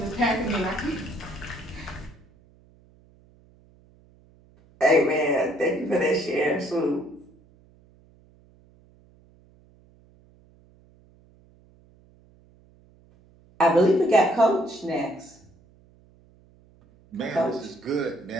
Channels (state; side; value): noise; right; hum, 29 dB below the sound